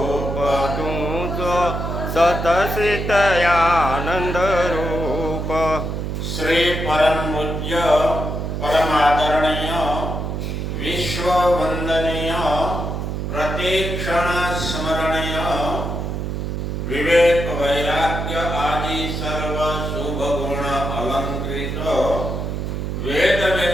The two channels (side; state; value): right; noise; hum, 3 dB below the sound